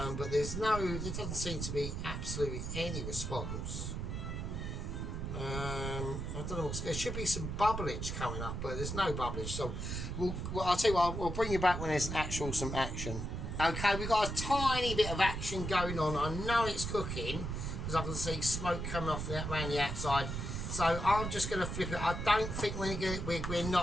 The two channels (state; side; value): noise; right; rumble, 4 dB below the sound